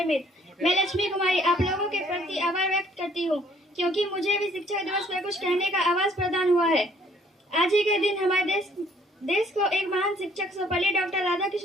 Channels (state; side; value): normal; both; correlation 0.60